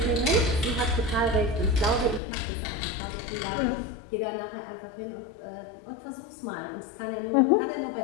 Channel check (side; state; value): right; drops out; at 2.2 s